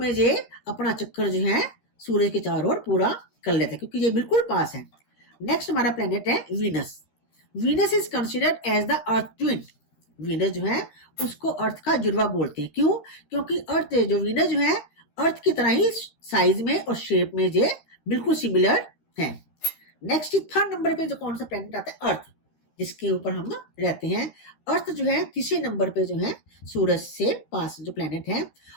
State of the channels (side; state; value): right; late; 13 ms